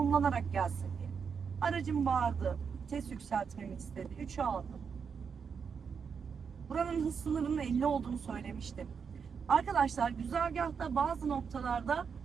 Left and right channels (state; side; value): quieter; left; 6.3 dB